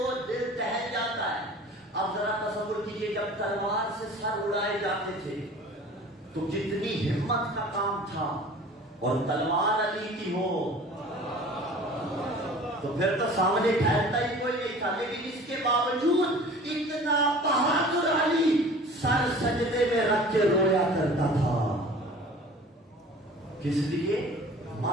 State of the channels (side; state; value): both; normal; correlation 0.44